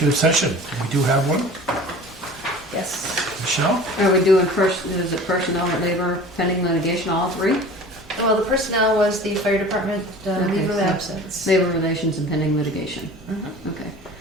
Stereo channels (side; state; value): both; normal; correlation 0.41